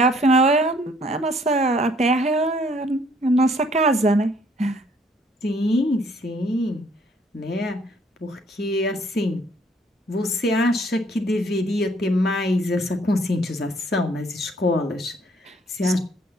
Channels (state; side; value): normal; both; correlation 0.62